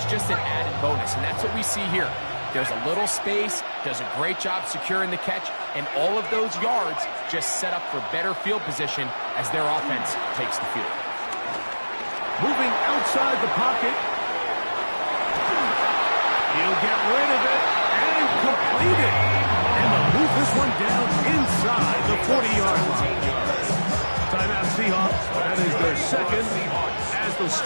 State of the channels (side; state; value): both; inverted; correlation -1.00